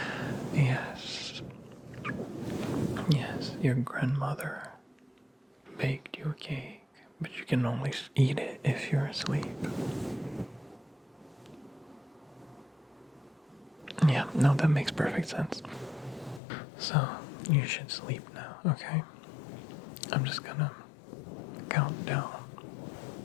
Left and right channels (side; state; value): right; drops out; at 16.4 s